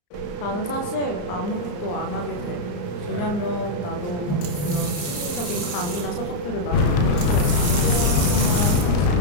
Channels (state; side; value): late; right; 34 ms